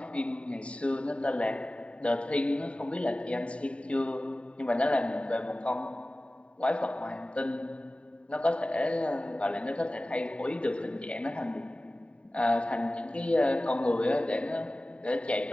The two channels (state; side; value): late; right; 0.060 ms